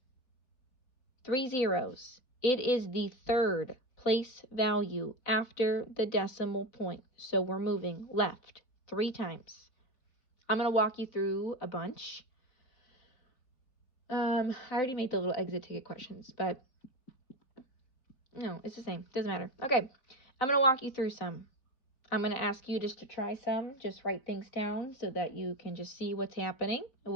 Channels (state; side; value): late; right; 4.0 ms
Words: 3 zeros. It is the third place value after the decimal point. So we're moving left 3 times. I'm going to walk you through a bunch. I already made the little exit ticket questions, but no, it's the same. Doesn't matter. Okay, I'm going to walk you through some. I'm going to ask you just to try some. Just write things down so that you can just see what's happening, and